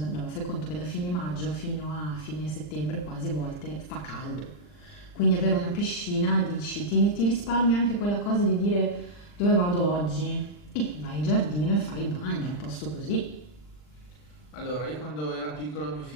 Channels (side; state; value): right; late; 40 ms